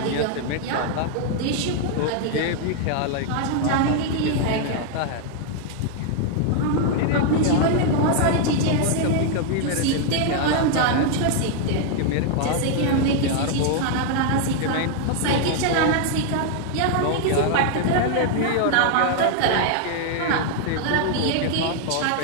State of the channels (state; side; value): different; both; correlation 0.00